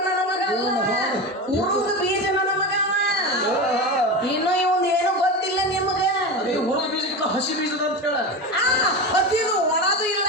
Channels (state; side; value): normal; both; correlation 0.23